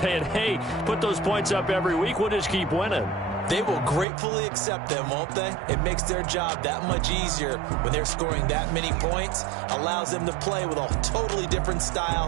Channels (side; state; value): left; drops out; at 4.0 s